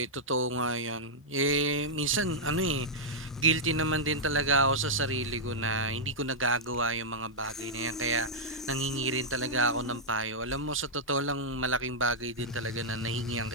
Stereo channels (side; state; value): both; normal; correlation -0.08